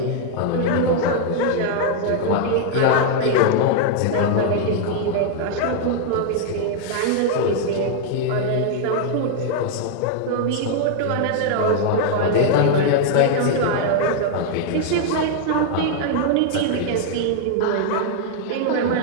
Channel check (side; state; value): both; different; correlation 0.00